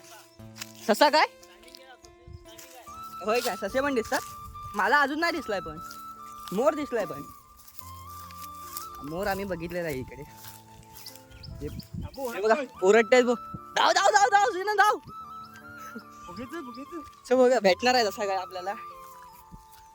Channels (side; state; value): both; identical; correlation 1.00